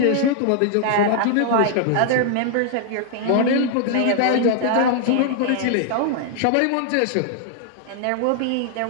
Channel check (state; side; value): different; both; correlation 0.00